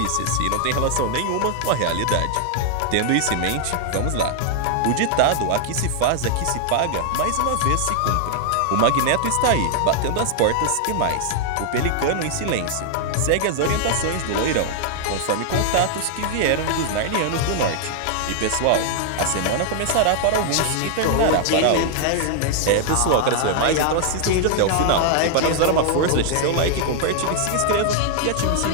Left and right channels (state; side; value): different; both; correlation 0.00